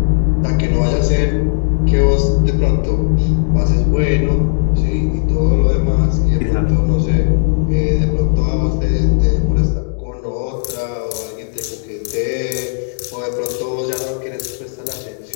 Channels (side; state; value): right; silent; 69 dB below the other